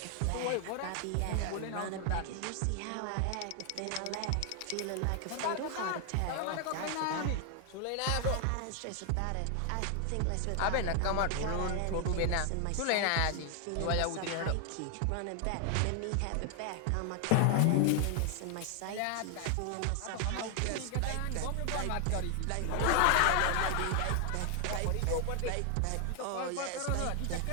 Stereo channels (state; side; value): different; both; correlation 0.00